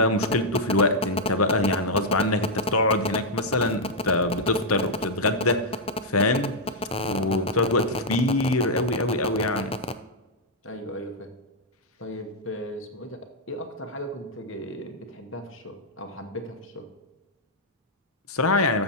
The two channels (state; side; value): normal; both; correlation -0.04